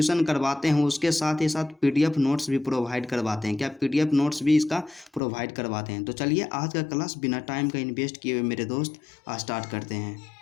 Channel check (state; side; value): drops out; right; at 5.2 s